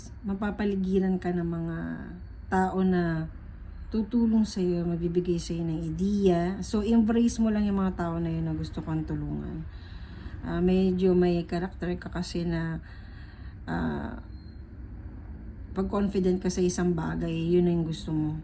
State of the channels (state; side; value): identical; both; correlation 1.00